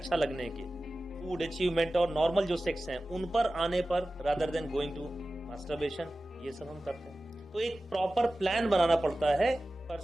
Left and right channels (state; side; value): normal; both; correlation 0.96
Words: लगने के, फूड, अचीवमेंट और नॉर्मल जो सेक्स हैं, उन पर आने पर rather than going to masturbation, ये सब हम करते हैं। तो एक प्रॉपर प्लान बनाना पड़ता है,